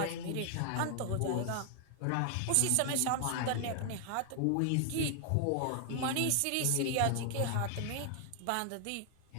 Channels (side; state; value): both; different; correlation 0.00